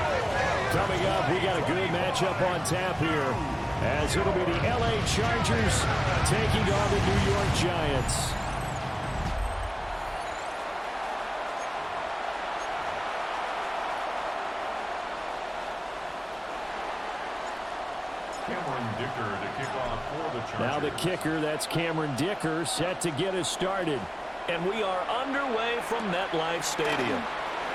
Coming up, we got a good matchup on tap here, as it'll be the LA Chargers taking on the New York Giants. Now the kicker, that's Cameron Dicker, set to get us started. And we are underway from MetLife Stadium.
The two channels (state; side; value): identical; both; correlation 1.00